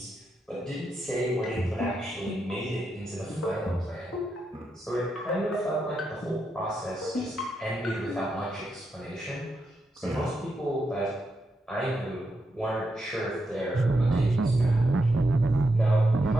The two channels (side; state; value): both; normal; correlation 0.84